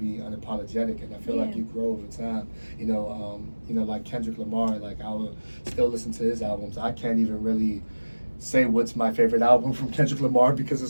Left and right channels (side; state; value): both; inverted; correlation -1.00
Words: unapologetic, and I feel like you grow over time. Like Kendrick Lamar, like I will still listen to his albums. I can't even really say what's my favorite album from Kendrick Lamar because